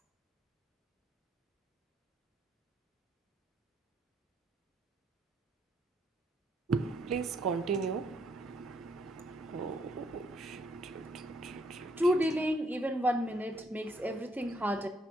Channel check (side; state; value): both; normal; correlation 0.71